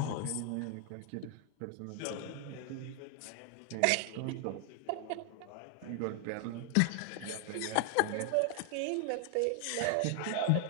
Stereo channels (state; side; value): different; both; correlation 0.00